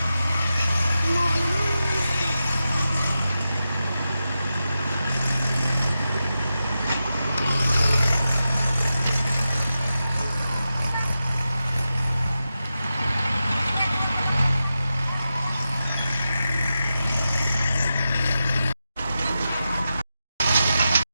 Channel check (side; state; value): both; inverted; correlation -0.91